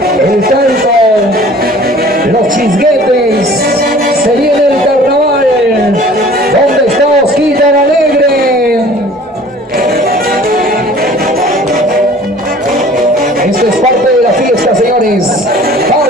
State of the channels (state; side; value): normal; both; correlation 0.49